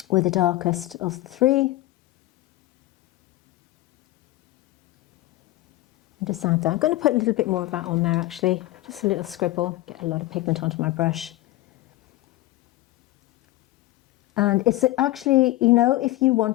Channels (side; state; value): right; quieter; 17.4 dB